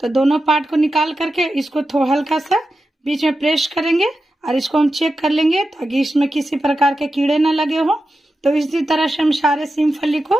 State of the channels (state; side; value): normal; both; correlation 0.91